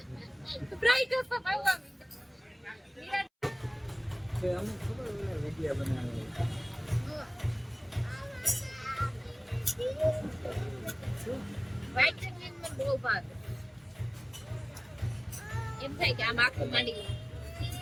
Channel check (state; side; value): identical; both; correlation 1.00